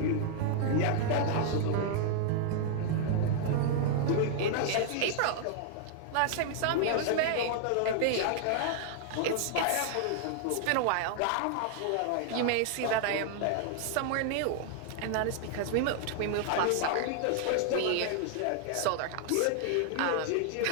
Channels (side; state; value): both; different; correlation -0.01